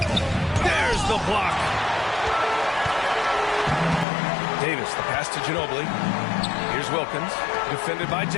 There's the block. Davis, the pass to Ginobili. Here's Wilkins, defended by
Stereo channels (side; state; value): right; drops out; at 4.0 s